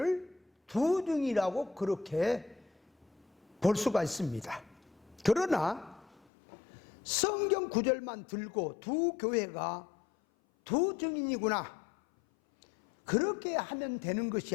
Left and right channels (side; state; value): right; drops out; at 6.2 s